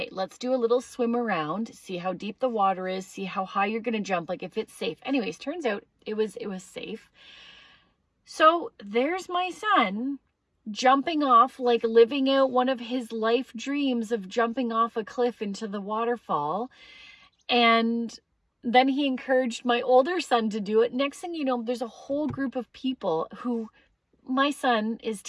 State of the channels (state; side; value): identical; both; correlation 1.00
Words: let's do a little swim around, see how deep the water is, see how high you're going to jump, like if it's safe. Anyways, turns out it was safe. So there's my son jumping off, like living out one of his life dreams of jumping off a cliff into the waterfall. And then he encouraged my older son to do it. Next thing you know, there's a whole group of people who my son is